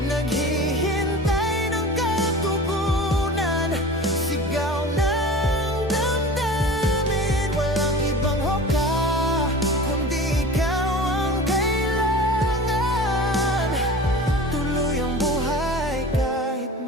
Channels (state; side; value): normal; both; correlation 0.37